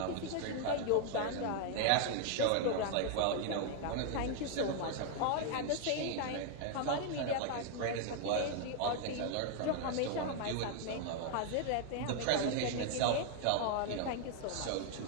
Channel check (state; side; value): different; both; correlation 0.00